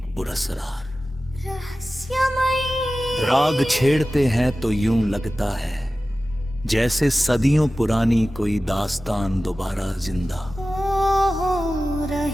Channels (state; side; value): normal; both; correlation 0.96